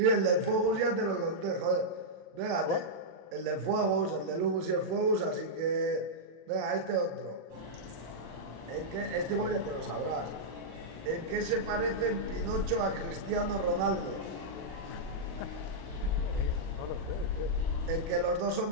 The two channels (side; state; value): left; late; 39 ms